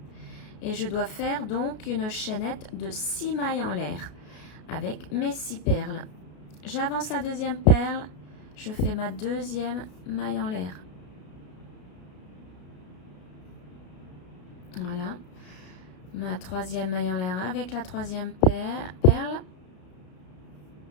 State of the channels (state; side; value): late; right; 33 ms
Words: Et je dois faire donc une chaînette de 6 mailles en l'air avec mes 6 perles. J'avance la deuxième perle, je fais ma deuxième maille en l'air. Voilà. Ma troisième maille en l'air avec la troisième perle.